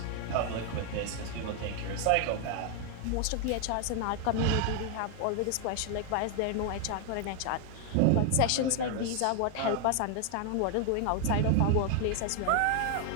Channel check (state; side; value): different; both; correlation 0.01